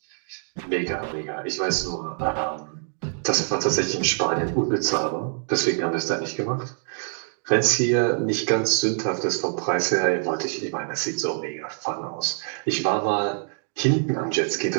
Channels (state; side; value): silent; left; 62 dB below the other